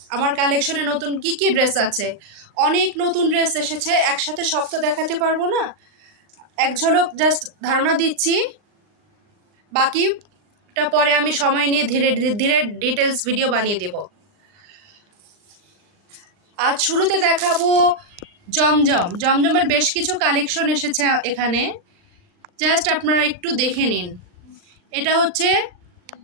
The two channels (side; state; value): left; late; 39 ms